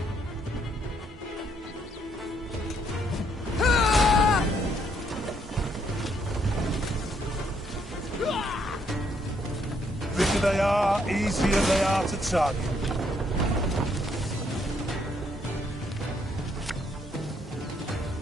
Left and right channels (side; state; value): both; normal; correlation 0.71